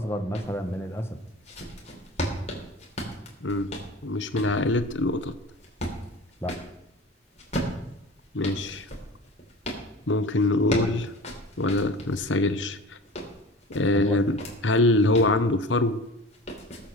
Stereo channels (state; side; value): normal; both; correlation 0.37